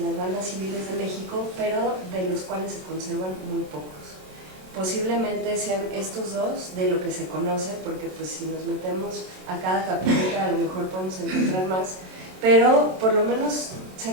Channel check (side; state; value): left; late; 27 ms